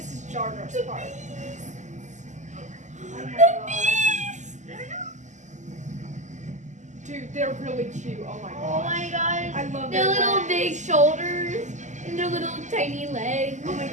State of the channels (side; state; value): left; late; 0.34 ms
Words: is Jar Jar's part. Oh my gosh. Dude, they're really cute. Oh my Oh god. my gosh. I love Their their little legs. big shoulders and their little tiny legs. Oh my